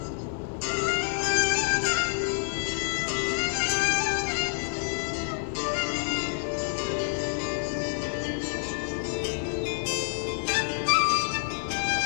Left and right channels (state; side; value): silent; right; 59 dB below the other